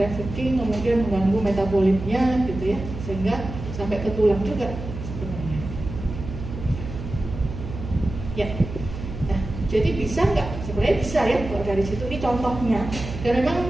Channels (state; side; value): noise; right; hum, 9 dB below the sound